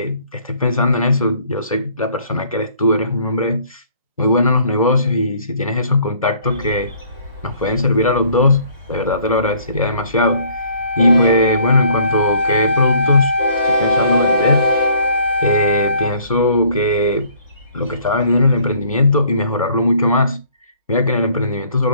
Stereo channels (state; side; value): inverted; both; correlation -0.59